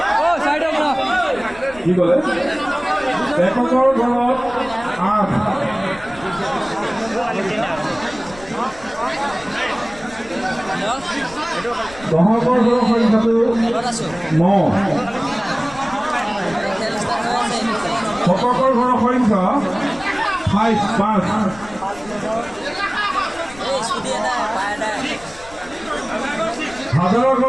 কি ক'লে এককৰ ঘৰত 8 দহকৰ ঘৰৰ সংখ্যাটো 9 শতকৰ ঘৰৰ সংখ্যা 5 হাজাৰৰ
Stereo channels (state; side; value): noise; left; rumble, 20 dB below the sound